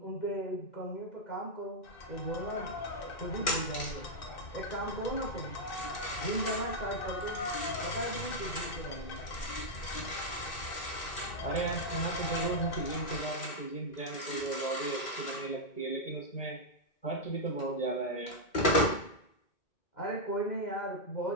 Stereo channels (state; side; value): late; right; 2.4 ms